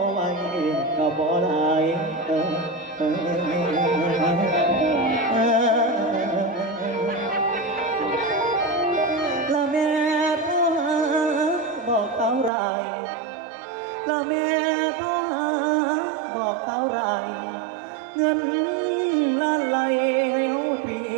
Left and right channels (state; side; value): drops out; left; at 12.5 s